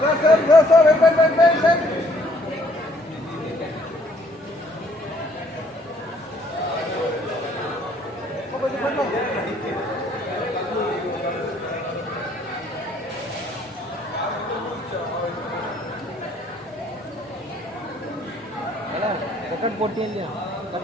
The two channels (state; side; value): normal; both; correlation 0.63